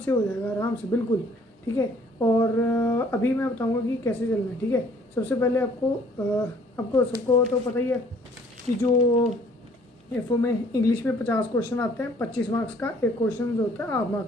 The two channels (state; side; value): normal; both; correlation 0.58